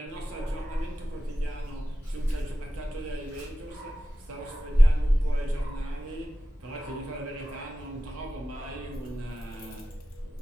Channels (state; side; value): normal; both; correlation 0.94